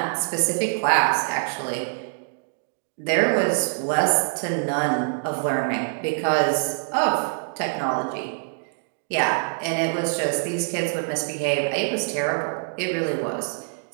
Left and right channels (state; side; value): silent; left; digital silence